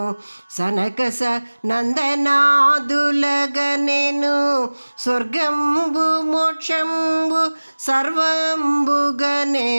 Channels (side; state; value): both; inverted; correlation -1.00